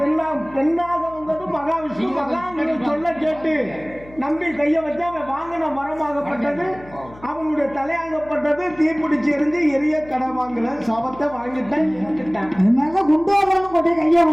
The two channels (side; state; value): left; noise; hum, 21 dB below the sound